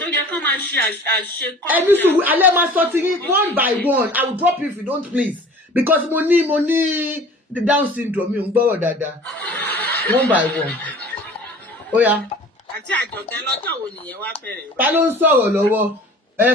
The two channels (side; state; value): both; normal; correlation 0.45